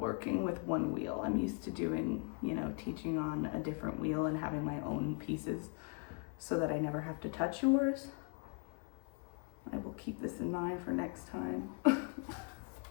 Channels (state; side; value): quieter; right; 37.1 dB